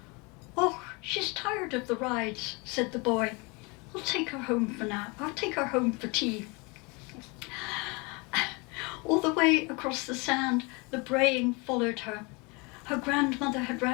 "Oh, she's tired of the rides," said the boy. "I'll take her home for now. I'll take her home for tea." All the way across the sand, the braying followed her. Her grandmother had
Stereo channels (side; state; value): right; quieter; 28.7 dB